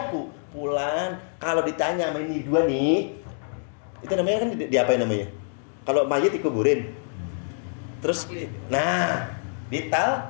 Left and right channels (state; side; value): silent; right; digital silence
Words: Pulang, kalau ditanya sama ini dua nih, itu namanya kan diapain namanya? Kalau mayat dikuburin. Terus